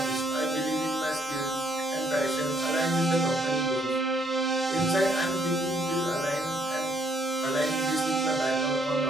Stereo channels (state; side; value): normal; both; correlation 0.68